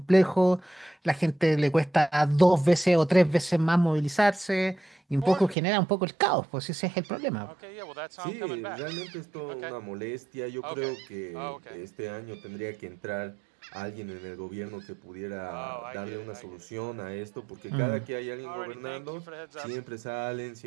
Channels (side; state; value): left; drops out; at 5.6 s